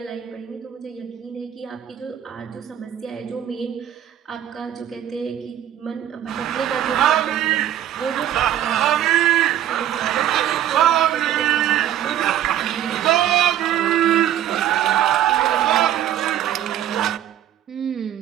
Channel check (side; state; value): left; quieter; 11.2 dB